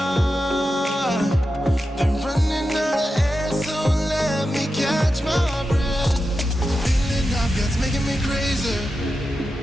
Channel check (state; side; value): normal; both; correlation 0.90